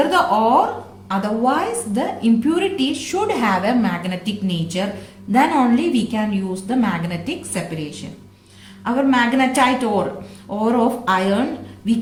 the ore, otherwise the impurity should have a magnetic nature, then only we can use the magnetic separation. Our magnetite ore of iron, we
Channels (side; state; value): both; identical; correlation 1.00